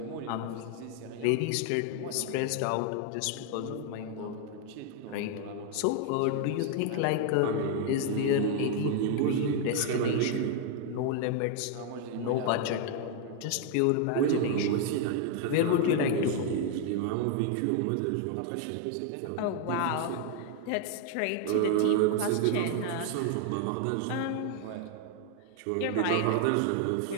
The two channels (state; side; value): different; both; correlation 0.00